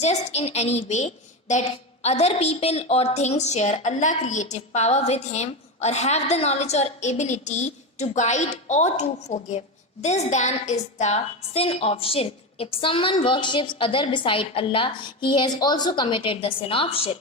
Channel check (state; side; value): normal; both; correlation 0.17